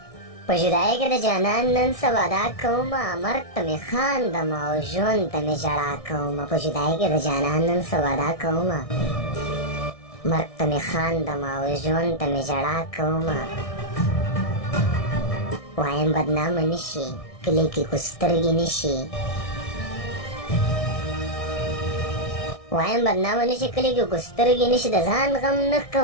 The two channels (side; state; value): right; late; 1.6 ms